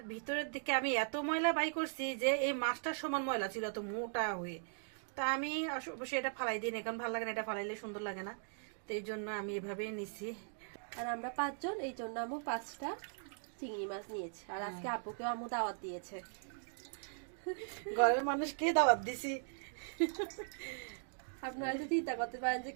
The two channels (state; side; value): silent; left; digital silence